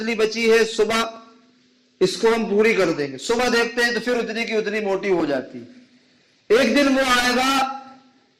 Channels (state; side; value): identical; both; correlation 1.00